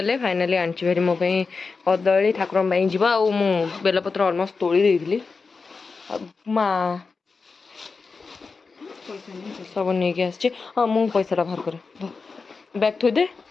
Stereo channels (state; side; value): quieter; right; 4.5 dB